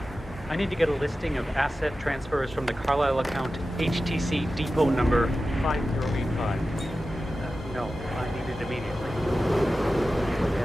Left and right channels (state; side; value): normal; both; correlation 0.94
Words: I need to get a listing of asset transfers from the Carlyle account, HTC depot number 5085. No, I need it immediately.